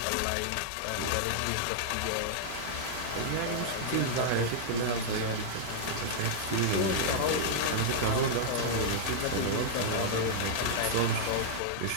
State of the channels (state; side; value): different; both; correlation -0.01